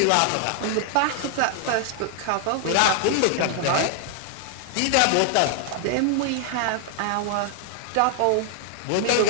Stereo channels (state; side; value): different; both; correlation 0.00